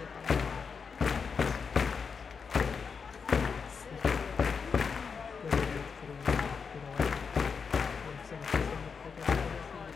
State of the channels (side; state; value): right; quieter; 5.7 dB